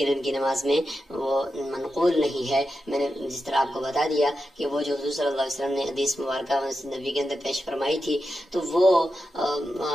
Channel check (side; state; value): both; normal; correlation 0.89